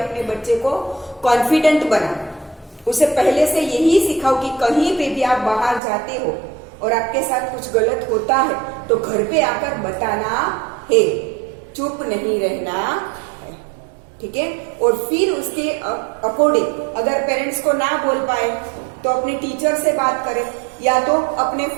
बच्चे को confident बनाओ, उसे पहले से यही सिखाओ कि कहीं पे भी आप बाहर जाते हो और आपके साथ कुछ गलत होता है तो घर पे आकर बताना है, चुप नहीं रहना है, ठीक है। और फिर उसके अकॉर्डिंग अगर पेरेंट्स को ना बोल पाए तो अपने टीचर से बात करें या तो अपने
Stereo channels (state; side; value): drops out; left; at 5.8 s